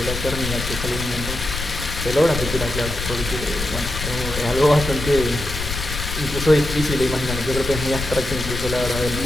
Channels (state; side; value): noise; left; rumble, 6 dB below the sound